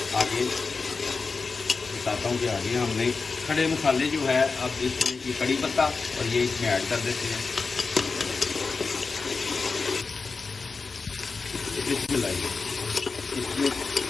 आगे बताता हूँ कि आगे हमने खड़े मसाले जो है, अब इसमें ये कड़ी पत्ता और ये इसमें ऐड कर देते हैं। इसमें लाइए, इसमें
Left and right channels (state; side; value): quieter; right; 4.5 dB